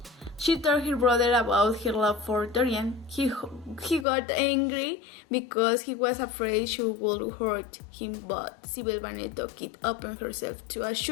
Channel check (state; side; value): drops out; right; at 4.0 s